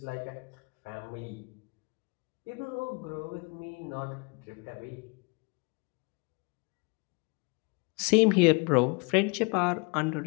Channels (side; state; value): right; quieter; 31.1 dB